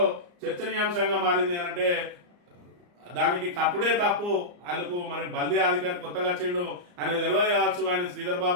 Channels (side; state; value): left; late; 34 ms